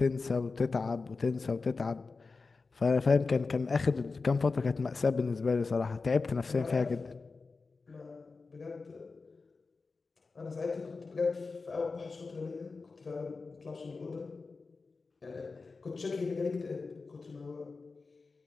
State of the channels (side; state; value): right; quieter; 4.2 dB